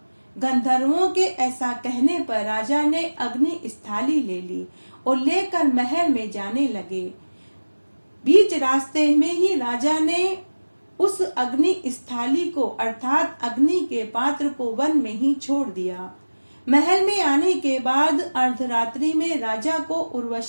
गंधर्वों के ऐसा कहने पर राजा ने अग्नि स्थाली ले ली और लेकर महल में जाने लगे। बीच रास्ते में ही राजा ने उस अग्नि स्थाली को अर्थात अग्नि के पात्र को वन में ही छोड़ दिया। महल में आने के बाद अर्धरात्रि में राजा को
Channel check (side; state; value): both; inverted; correlation -1.00